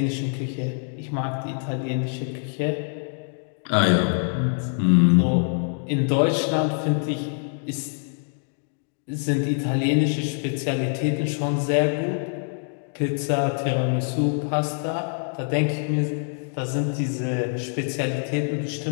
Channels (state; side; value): silent; right; 62 dB below the other